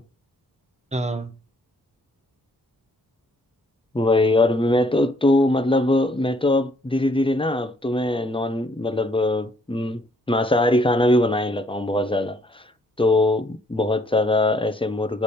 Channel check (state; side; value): normal; both; correlation 0.65